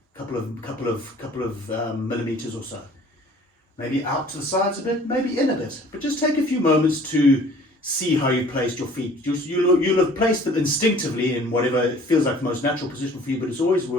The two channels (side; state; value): both; normal; correlation 0.51